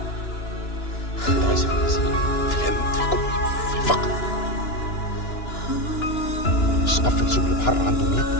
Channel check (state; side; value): late; right; 2.9 ms